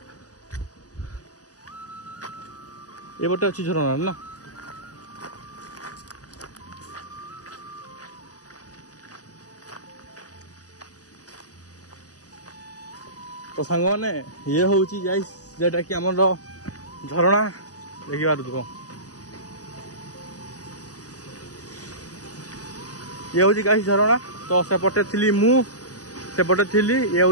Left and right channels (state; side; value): late; right; 0.67 ms